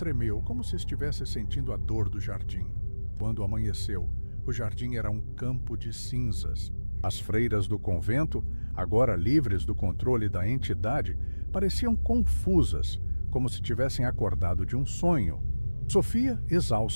como se estivesse sentindo a dor do jardim. Quando amanheceu, o jardim era um campo de cinzas. As freiras do convento, agora livres do controle da entidade, pareciam confusas, como se tivessem acordado de um sonho. Sofia,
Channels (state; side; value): inverted; both; correlation -1.00